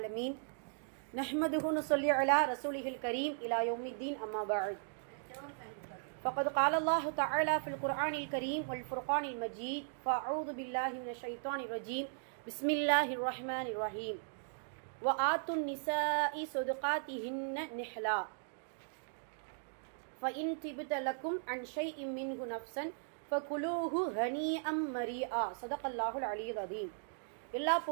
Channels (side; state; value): left; silent; digital silence